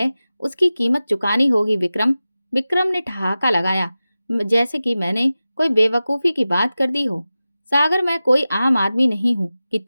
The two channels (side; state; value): both; inverted; correlation -0.95